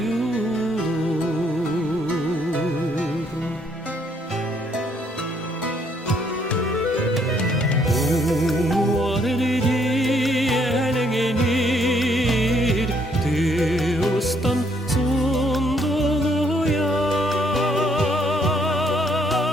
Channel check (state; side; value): normal; both; correlation 0.69